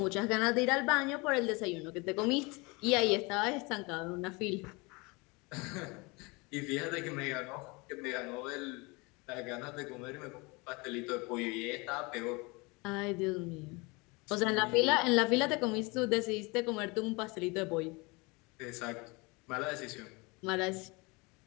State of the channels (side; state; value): right; quieter; 26.8 dB